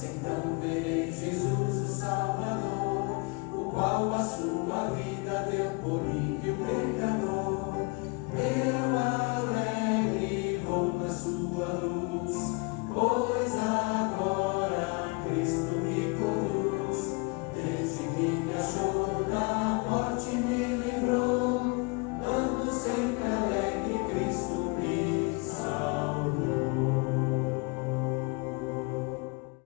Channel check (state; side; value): quieter; right; 30.7 dB